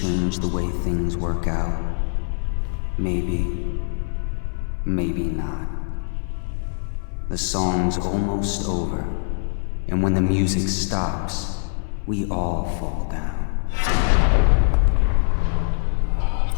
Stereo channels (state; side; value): silent; right; 63 dB below the other